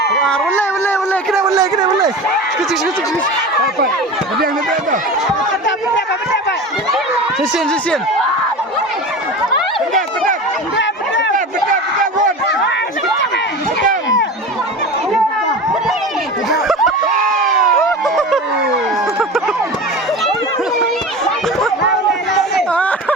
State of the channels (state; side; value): normal; both; correlation 0.31